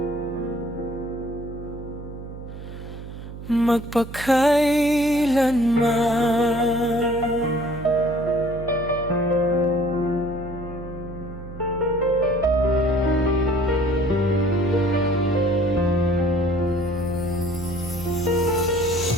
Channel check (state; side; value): noise; right; hum, 12 dB below the sound